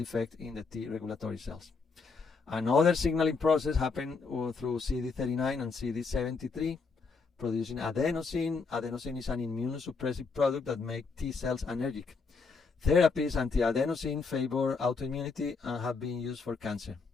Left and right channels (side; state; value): right; quieter; 4.6 dB